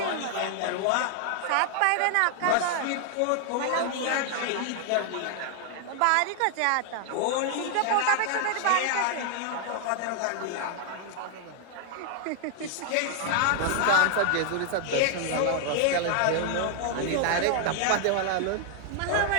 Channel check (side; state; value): both; different; correlation 0.00